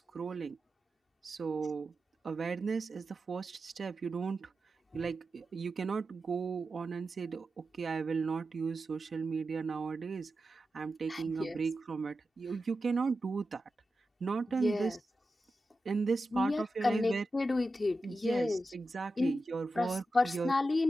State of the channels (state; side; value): normal; both; correlation 0.91